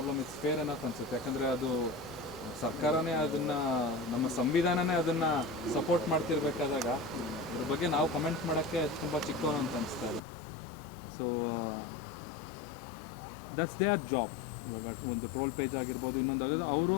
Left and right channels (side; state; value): right; drops out; at 10.2 s